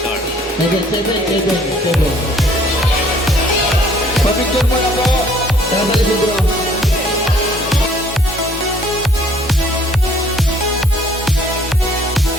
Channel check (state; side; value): normal; both; correlation 0.59